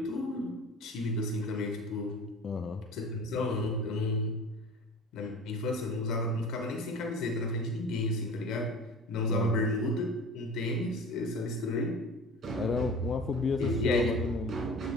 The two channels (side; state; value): both; normal; correlation 0.38